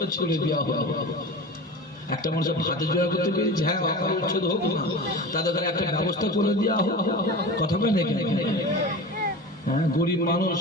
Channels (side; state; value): both; normal; correlation 0.31